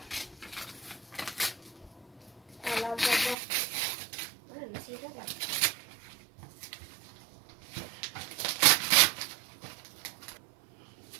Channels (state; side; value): drops out; left; at 3.4 s